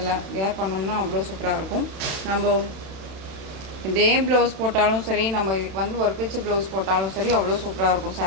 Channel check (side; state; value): left; late; 31 ms